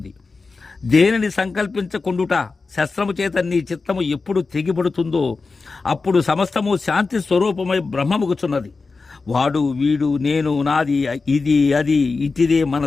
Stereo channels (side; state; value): right; quieter; 4.1 dB